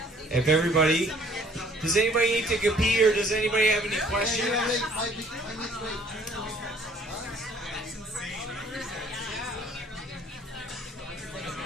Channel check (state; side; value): normal; both; correlation 0.57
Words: If everybody, does anybody need to go pee or does anybody have any questions?